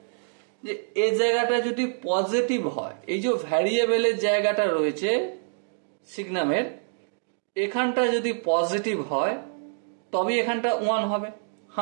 যে এই জায়গাটা যদি পজিটিভ হয়, এই যে ভ্যারিয়েবলের জায়গাটা রয়েছে সিগনামের, এখানটা যদি পজিটিভ হয় তবে এখানটা 1 হবে।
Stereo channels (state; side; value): silent; left; digital silence